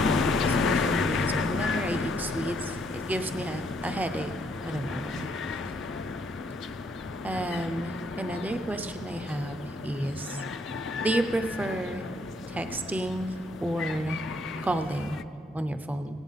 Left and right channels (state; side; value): normal; both; correlation 0.70